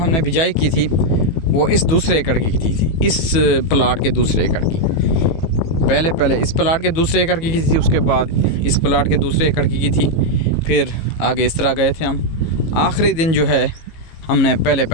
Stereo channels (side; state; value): right; late; 18 ms